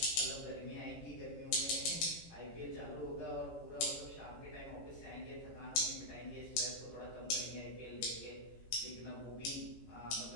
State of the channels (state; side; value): late; right; 18 ms